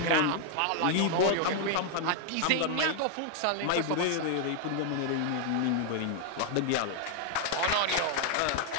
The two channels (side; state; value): both; different; correlation 0.00